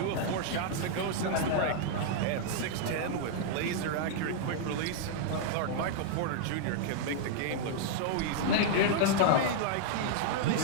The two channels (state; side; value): different; both; correlation -0.01